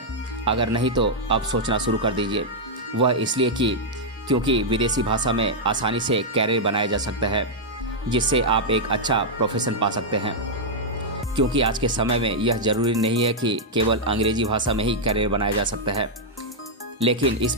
अगर नहीं तो अब सोचना शुरू कर दीजिए। वह इसलिए क्योंकि विदेशी भाषा में आसानी से कैरियर बनाया जा सकता है, जिससे आप एक अच्छा प्रोफेशन पा सकते हैं। क्योंकि आज के समय में यह ज़रूरी नहीं है कि केवल अंग्रेजी भाषा में ही कैरियर बनाया जा सकता है, लेकिन इस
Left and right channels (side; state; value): both; normal; correlation -0.05